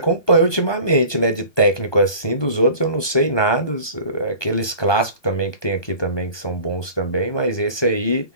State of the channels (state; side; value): late; right; 1.2 ms